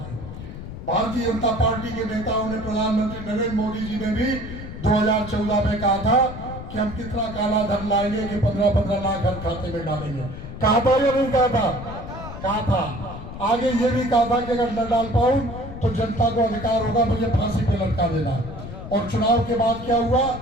भारतीय जनता पार्टी के नेताओं ने, प्रधानमंत्री नरेंद्र मोदी जी ने भी 2014 में कहा था कि हम कितना काला धन लाएंगे कि 15-15 लाख हर खाते में डालेंगे। कहा था या नहीं कहा था? कहा था। आगे ये भी कहा था कि अगर न डाल पाऊं तो जनता को अधिकार होगा मुझे फांसी पे लटका देना। और चुनाव के बाद क्या हुआ?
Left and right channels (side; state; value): left; noise; rumble, 10 dB below the sound